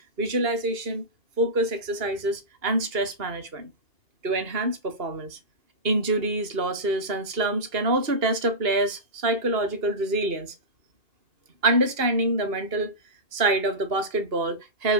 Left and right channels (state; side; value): late; left; 2.8 ms